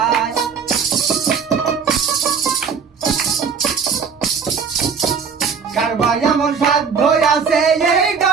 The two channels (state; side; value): quieter; left; 6.1 dB